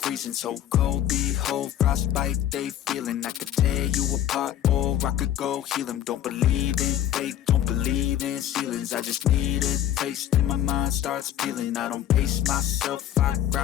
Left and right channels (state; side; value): quieter; right; 11.3 dB